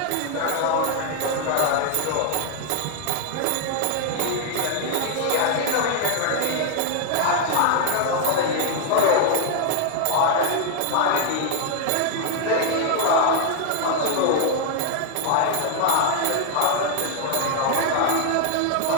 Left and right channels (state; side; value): different; both; correlation 0.00